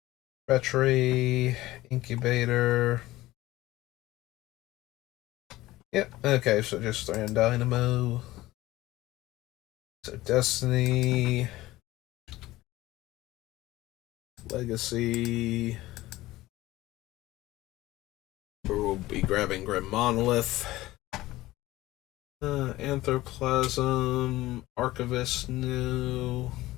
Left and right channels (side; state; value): right; quieter; 17.3 dB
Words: Treachery. Incubator. Yep, okay, so just Grand Dynamo. So Destiny. Legacy. We'll be grabbing Grim Monolith. Anthroplasm. Archivist, no.